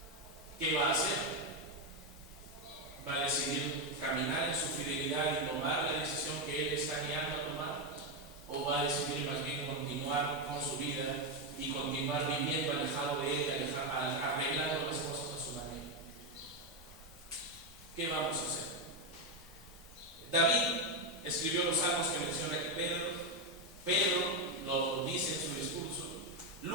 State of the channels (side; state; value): both; normal; correlation 0.06